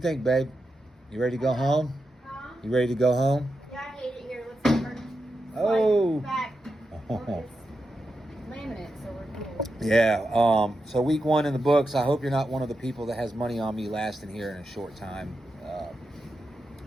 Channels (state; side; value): normal; both; correlation 0.88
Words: babe? You ready to go home? Huh? You ready to go home? Yeah, I hate it here. Let's start. Oh. Back. Oh. It's laminate, so we're cool. Yeah. So week 1 in the books. I hope you're not one of the people that has money on me lasting here in a short time.